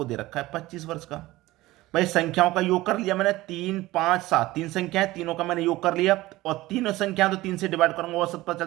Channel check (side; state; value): left; quieter; 18.1 dB